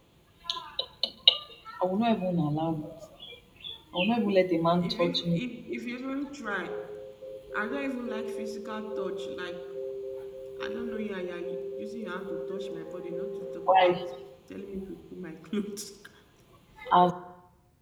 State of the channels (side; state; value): both; identical; correlation 1.00